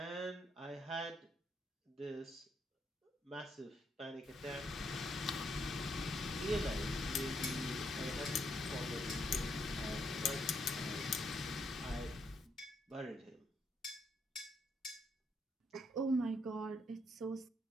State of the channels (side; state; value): both; normal; correlation 0.75